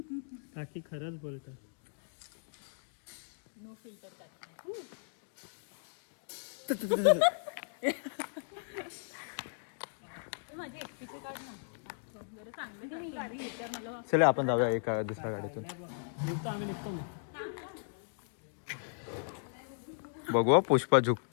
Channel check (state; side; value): silent; right; digital silence